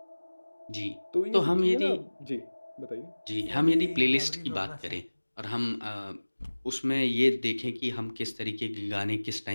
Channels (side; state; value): both; inverted; correlation -1.00